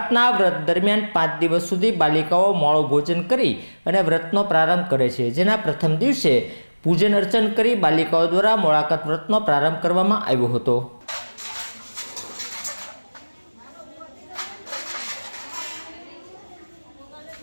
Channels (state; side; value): inverted; both; correlation -1.00